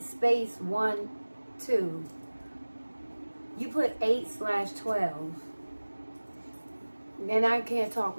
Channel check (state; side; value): inverted; both; correlation -1.00